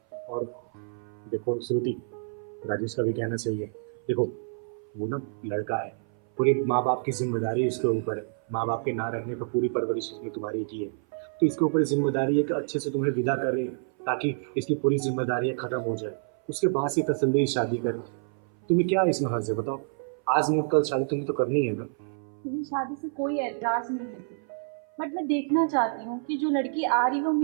और देखो श्रुति, राजेश का भी कहना सही है। देखो वो ना लड़का है, पूरी माँ बाप की जिम्मेदारी इसके ऊपर है। माँ बाप के ना रहने पर पूरी परवरिश इसमें तुम्हारी की है, तो इसके ऊपर जिम्मेदारी है कि अच्छे से तुम्हें विदा करें ताकि इसकी पूरी जिम्मेदारियाँ खत्म हो जाए, उसके बाद से तसल्ली शादी करें। तुम्हें क्या इसमें हर्ज है बताओ? आज नहीं कल शादी तुम्हें तो करनी है ना। मुझे शादी से कोई एतराज नहीं है, बट मैं देखना चाहती हूँ कि जो लड़की आ रही है वो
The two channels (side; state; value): left; silent; 57 dB below the other